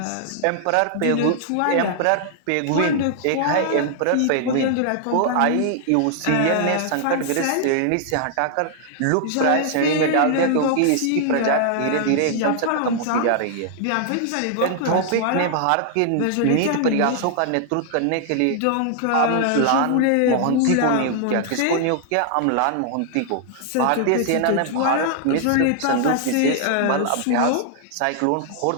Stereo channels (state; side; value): different; both; correlation 0.00